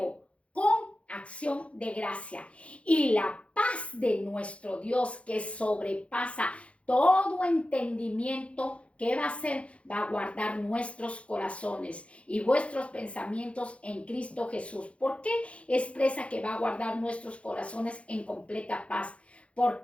con acción de gracia. Y la paz de nuestro Dios, que sobrepasa todo entendimiento, ¿qué va a hacer? Va a guardar nuestros corazones y vuestros pensamientos en Cristo Jesús. ¿Por qué expresa que va a guardar nuestros corazones en completa paz?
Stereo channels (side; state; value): right; late; 0.062 ms